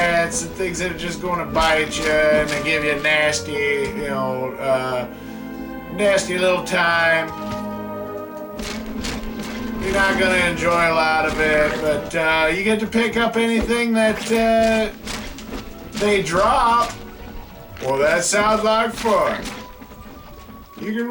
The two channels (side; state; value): both; identical; correlation 1.00